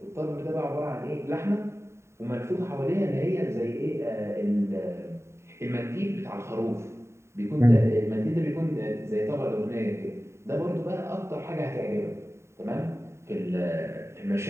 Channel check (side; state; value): left; late; 0.13 ms